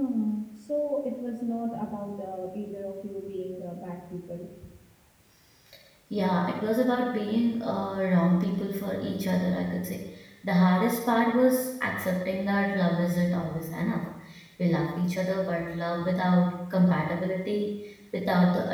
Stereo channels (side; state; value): both; identical; correlation 1.00